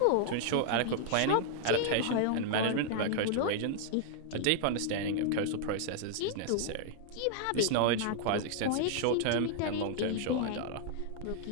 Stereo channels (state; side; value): different; both; correlation -0.01